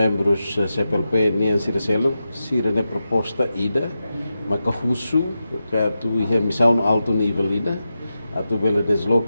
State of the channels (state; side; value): inverted; both; correlation -0.90